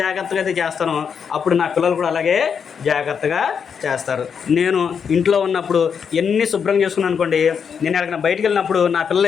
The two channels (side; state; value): right; quieter; 6.8 dB